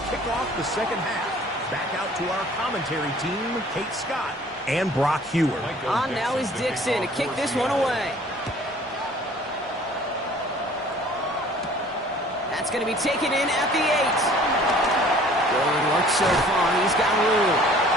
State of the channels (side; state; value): both; normal; correlation 0.52